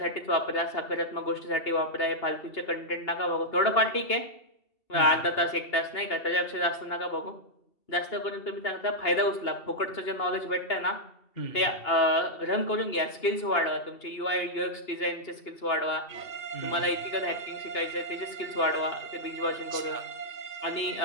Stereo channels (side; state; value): right; late; 2.7 ms